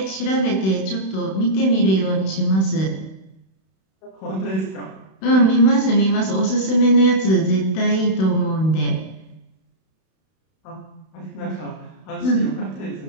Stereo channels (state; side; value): late; right; 31 ms